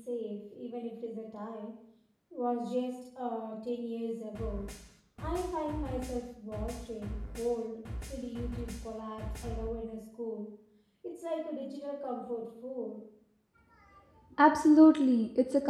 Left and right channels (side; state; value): both; identical; correlation 1.00